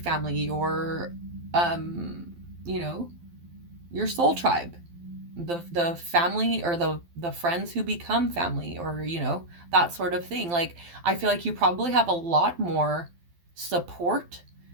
your, you know, your soul tribe, the family or the friends who become family, or you know, that sort of thing. Like, I feel like you probably have a lot more support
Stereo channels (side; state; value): left; late; 12 ms